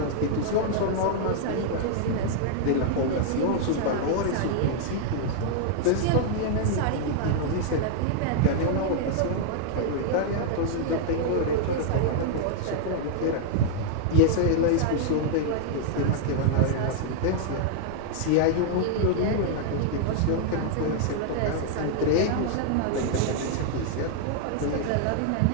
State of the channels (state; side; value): different; both; correlation -0.01